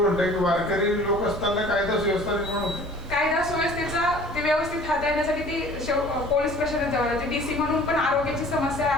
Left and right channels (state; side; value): normal; both; correlation 0.48